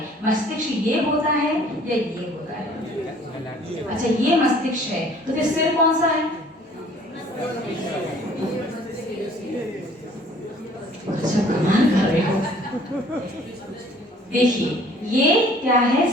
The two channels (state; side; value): normal; both; correlation 0.55